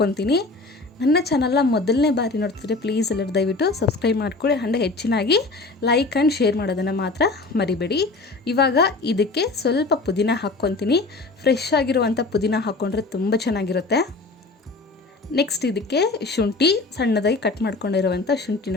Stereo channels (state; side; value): quieter; right; 3.5 dB